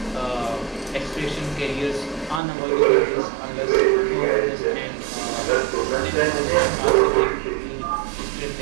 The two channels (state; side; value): drops out; left; at 2.4 s